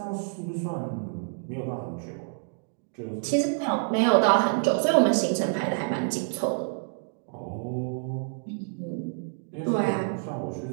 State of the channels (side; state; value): left; silent; digital silence